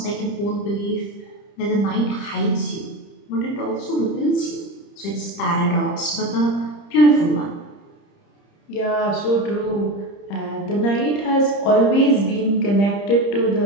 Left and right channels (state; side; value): late; right; 30 ms